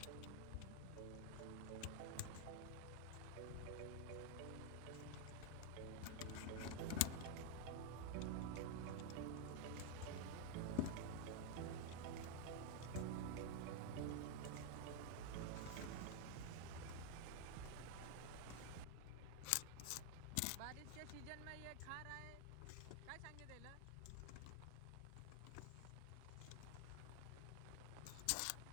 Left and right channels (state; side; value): different; both; correlation 0.00